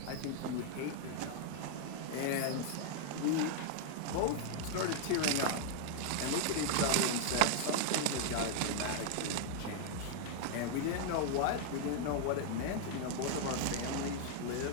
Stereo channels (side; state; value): both; different; correlation 0.00